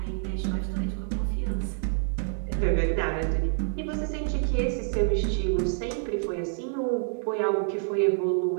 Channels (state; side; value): silent; left; digital silence